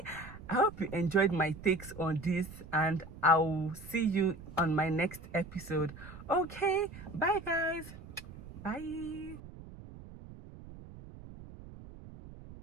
I hope you enjoyed my takes on this, and I'll see you on my next episode. Okay, bye guys, bye.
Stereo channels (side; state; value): right; noise; rumble, 15 dB below the sound